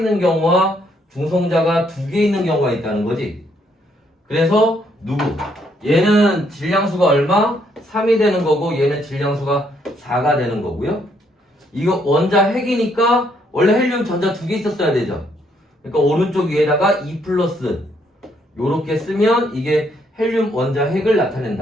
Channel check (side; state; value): both; normal; correlation 0.71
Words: 경우와 중성자가 두 개 있는 경우가 있다는 거지. 그래서 누구? 얘는 질량수가 얼마? 3이 되는 거고, 얘는 질량수가 4가 되는 거고요. 이거 원자핵이니까 원래 헬륨 전자 두 개 있었어야 되죠. 그러니까 오른쪽 위에다가 2 플러스 요렇게 쓰면 이게 헬륨 원자핵을